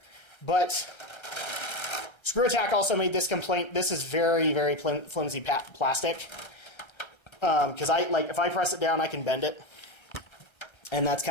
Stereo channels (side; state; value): right; late; 1.3 ms